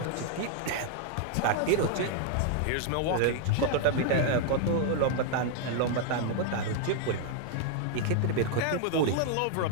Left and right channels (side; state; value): both; different; correlation 0.00